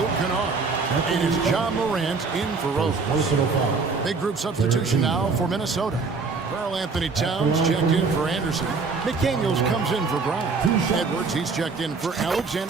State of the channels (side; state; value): left; quieter; 4.5 dB